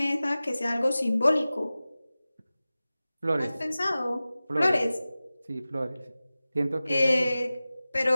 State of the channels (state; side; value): inverted; both; correlation -0.97